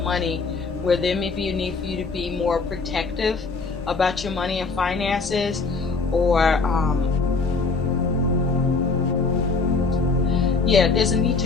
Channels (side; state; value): right; quieter; 4.3 dB